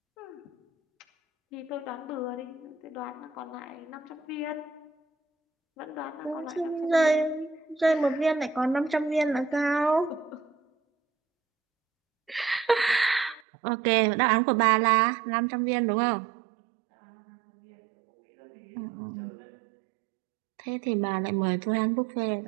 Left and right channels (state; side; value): drops out; left; at 13.4 s